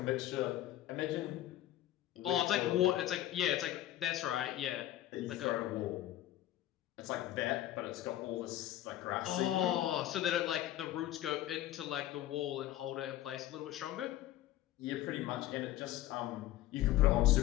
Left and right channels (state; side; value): quieter; right; 13.7 dB